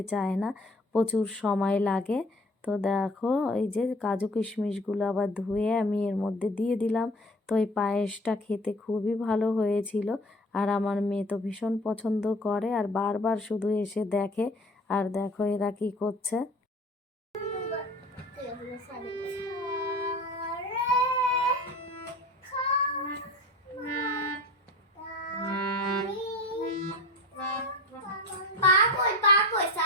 চায় না, প্রচুর সময় লাগে। তো দেখো এই যে কাজু কিশমিশগুলো আবার ধুয়ে আমি এর মধ্যে দিয়ে দিলাম। তো এই পায়েসটা খেতে খুবই ভালো হয়েছিল, আর আমার মেয়ে তো ভীষণ পছন্দ করে আর বারবার শুধু এসে দেখে। আর দেখো এরা কি করছে।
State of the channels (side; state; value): both; normal; correlation 0.42